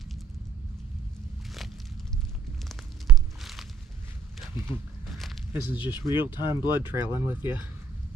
This is just real-time blood trailing with you.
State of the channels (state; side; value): quieter; left; 5.3 dB